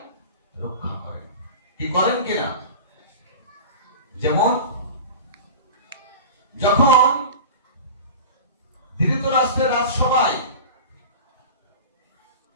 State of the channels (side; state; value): both; inverted; correlation -0.33